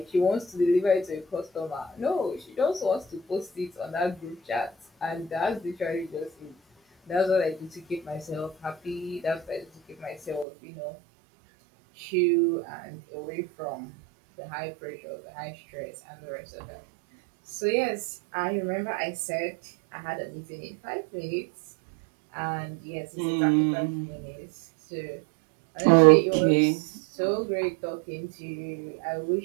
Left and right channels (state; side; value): drops out; left; at 10.5 s